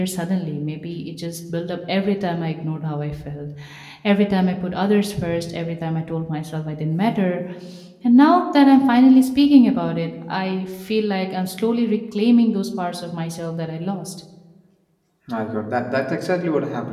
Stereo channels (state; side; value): identical; both; correlation 1.00